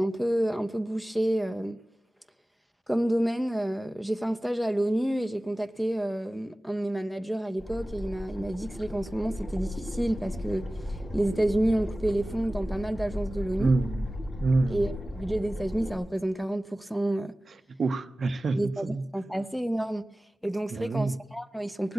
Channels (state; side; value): normal; both; correlation 0.97